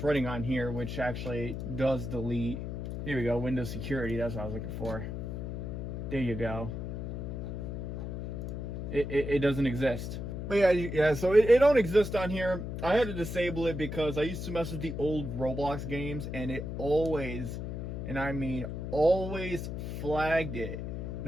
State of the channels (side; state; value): left; noise; hum, 5 dB below the sound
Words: running on here, which actually does delete. Here we go, Windows Security, that's what I was looking for. There you go. It doesn't exist. But yeah, so it don't exist on here. I had to disable it because I used to mess with the old Roblox games, and it always, and I mean always, flagged it.